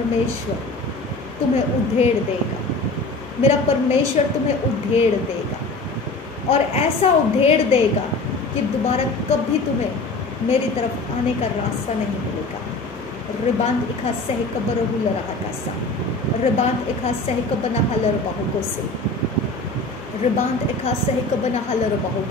तुम्हें उधेड़ देगा, मेरा परमेश्वर तुम्हें उधेड़ देगा, और ऐसा उधेड़ देगा कि दोबारा कभी तुम्हें मेरी तरफ आने का रास्ता नहीं मिलेगा। रिबांत इखा सह कबर रहा कैसा, रिबांत इखा सह कबना हलर बहुको से, रिबांत इखा सह कबना हलर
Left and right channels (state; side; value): quieter; right; 3.1 dB